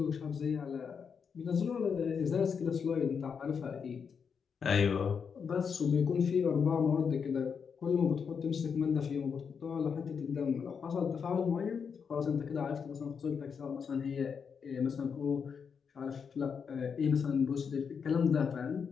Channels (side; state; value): right; quieter; 6.4 dB